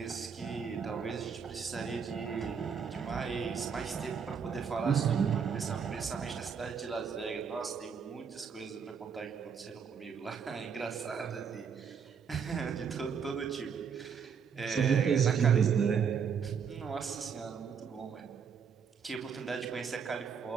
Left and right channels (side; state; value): left; quieter; 6.7 dB